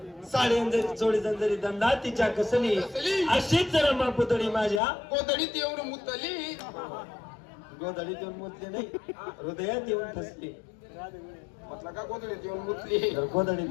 साडी अंजरी चोळी अंजरी दंडा तिच्या कसली. कसली? अशीच रमा पुतळी माझ्या गोधडीत येऊन मुतली. गोधडीत येऊन मुतली नाही, हृदयात येऊन फसली. म्हटलं का गोधडीत येऊन मुतली? तर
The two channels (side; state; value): right; drops out; at 4.8 s